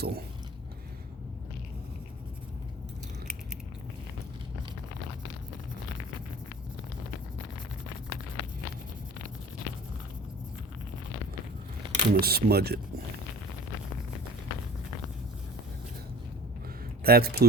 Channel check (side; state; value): both; normal; correlation 0.43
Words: I'm going to smudge it. That's